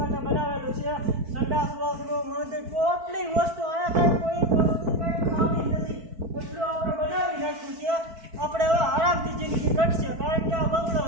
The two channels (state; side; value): late; left; 4.5 ms